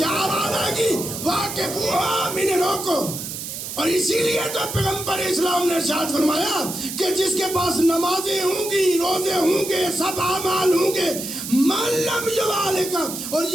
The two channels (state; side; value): noise; right; hiss, 7 dB below the sound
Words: آواز آئے گی؟ واقفوہم, انہیں روکو. اور اسی لیے تو پیغمبر اسلام نے ارشاد فرمایا کہ جس کے پاس نمازیں ہوں گی, روزے ہوں گے, سب اعمال ہوں گے, من لم یوالکا, اور